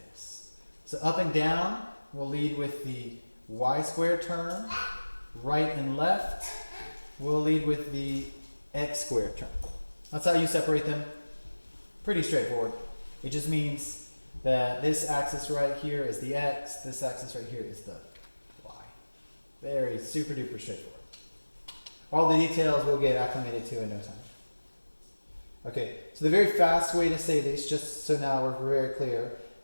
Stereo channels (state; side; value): inverted; both; correlation -1.00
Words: So up and down will lead with the y squared term. Right and left will lead with the x squared term. That's how you separate them. Pretty straightforward. It just means that this axis right here is the x, this axis right here is the y. Very super duper straightforward. All the details we'll get acclimated to in no time. Okay, so the very fast way to say this, just so now we're very clear,